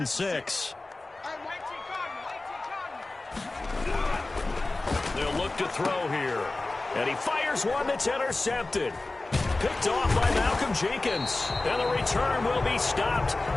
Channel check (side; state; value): right; quieter; 3.1 dB